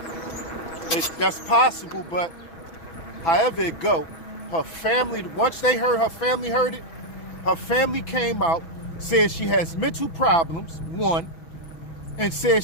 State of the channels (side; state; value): right; late; 6.0 ms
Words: That's possible, but however it go, her family, once they heard, her family heard it, her family came out, said she has mental problems, one, and said